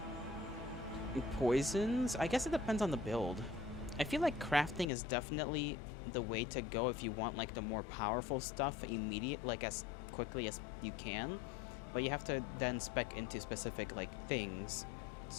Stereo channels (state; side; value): drops out; right; at 4.9 s